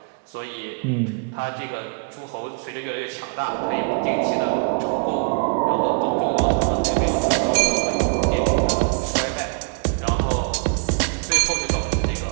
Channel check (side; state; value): left; quieter; 39.2 dB